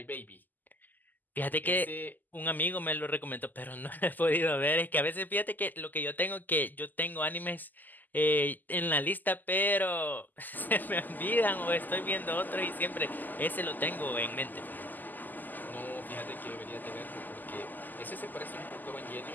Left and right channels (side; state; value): right; late; 0.085 ms